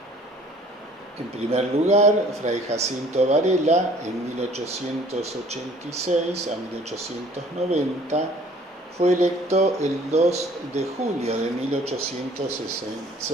En primer lugar, Fray Jacinto Varela, en 1886 a 1890, Fue electo el 2 de julio de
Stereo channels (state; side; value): normal; both; correlation 0.54